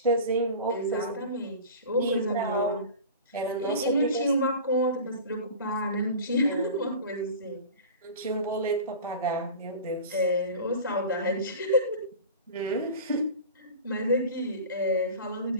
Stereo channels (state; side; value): inverted; both; correlation -0.35